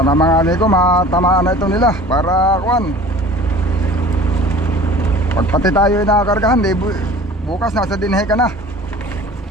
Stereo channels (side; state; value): both; normal; correlation 0.44